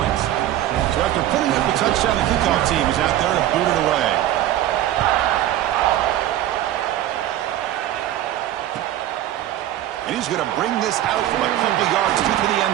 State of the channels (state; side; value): quieter; left; 13.0 dB